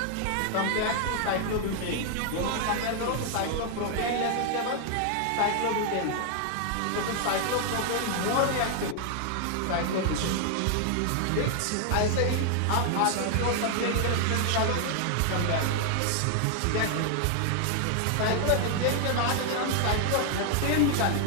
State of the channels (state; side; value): different; both; correlation 0.00